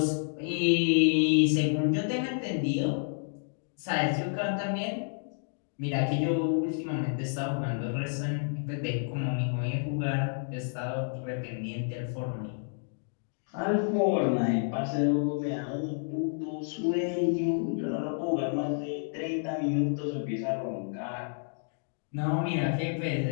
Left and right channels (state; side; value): silent; right; digital silence